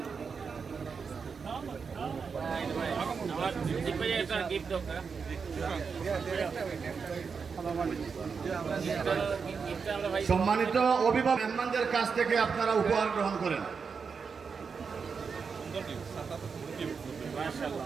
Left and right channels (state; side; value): quieter; left; 5.6 dB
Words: সম্মানিত অভিভাবক মেহমানদের কাছ থেকে আপনারা উপহার গ্রহণ করেন।